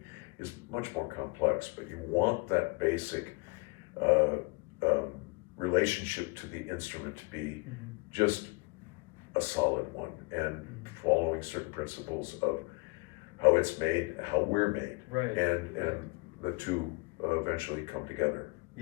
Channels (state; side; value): quieter; right; 29.6 dB